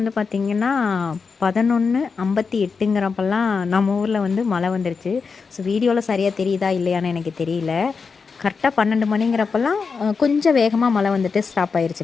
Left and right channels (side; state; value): right; quieter; 5.1 dB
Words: பார்த்திங்கன்னா 11:58ங்கிறப்பெல்லாம் நம்ம ஊரில் வந்து மழை வந்துருச்சு. ஸோ வீடியோவில் சரியாக தெரியுதா இல்லையான்னு எனக்கு தெரியல. கரெக்டாக 12 மணிங்கிறப்பெல்லாம் கொஞ்சம் வேகமாக மழை வந்துட்டு ஸ்டாப்